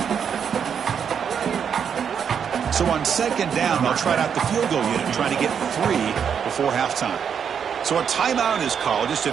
So on second down, they'll try out the field goal unit, trying to get 3 before halftime. So a timeout is called. Just a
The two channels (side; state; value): left; quieter; 7.5 dB